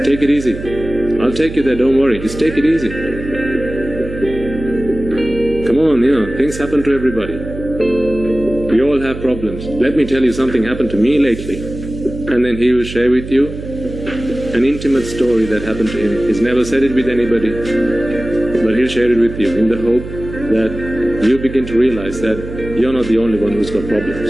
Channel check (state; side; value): noise; right; hum, 10 dB below the sound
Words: take it easy. I'll take you there, don't worry. Just take it easy. Come on, things happen to everybody. We all have problems. Let me tell you something happened to me lately. And then he will share with you an intimate story that happened to him. He's never said it with anybody, but he'll share it with you in the hope that you begin to realize that you're not the only one who's got